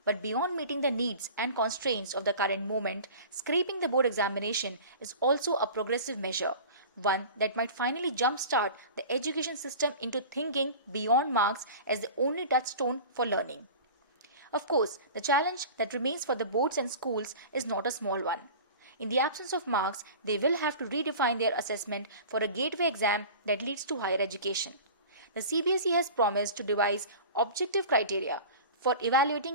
But beyond meeting the needs and constraints of the current moment, scrapping the board examination is also a progressive measure, one that might finally jumpstart the education system into thinking beyond marks as the only touchstone for learning. Of course, the challenge that remains for the boards and schools is not a small one. In the absence of marks, they will have to redefine their assessment for a gateway exam that leads to higher education. The CBSE has promised to devise objective criteria for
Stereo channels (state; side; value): inverted; both; correlation -0.37